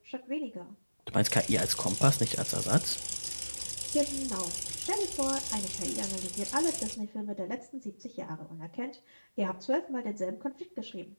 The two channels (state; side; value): inverted; both; correlation -1.00